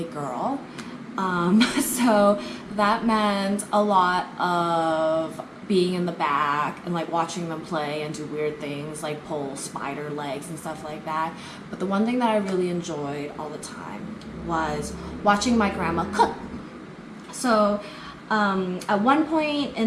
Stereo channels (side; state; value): both; identical; correlation 1.00